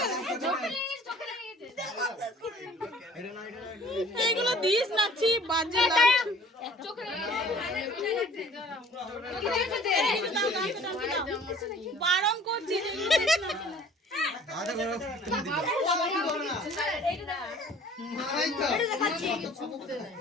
এগুলো দিস নাচি বাজে বারণ করছি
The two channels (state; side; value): normal; both; correlation 0.51